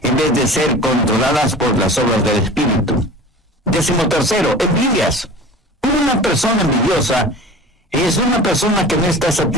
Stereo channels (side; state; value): both; normal; correlation 0.39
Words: en vez de ser controladas por las obras del Espíritu. Décimo tercero, envidias. Una persona envidiosa es una persona que no está